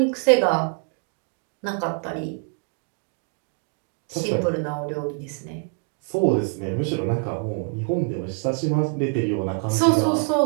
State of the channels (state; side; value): quieter; left; 39.7 dB